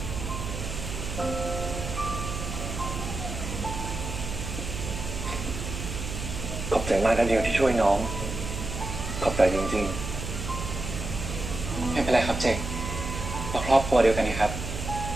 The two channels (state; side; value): noise; right; hum, 6 dB below the sound